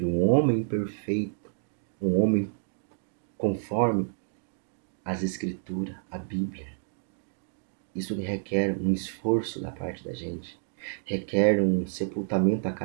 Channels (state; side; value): silent; left; digital silence